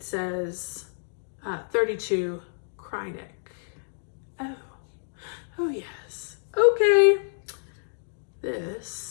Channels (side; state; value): right; silent; digital silence